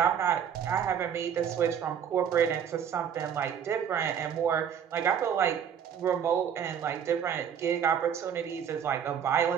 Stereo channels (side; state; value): left; quieter; 8.3 dB